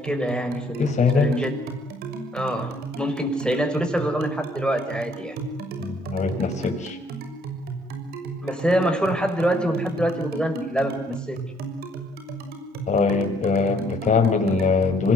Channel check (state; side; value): normal; both; correlation 0.64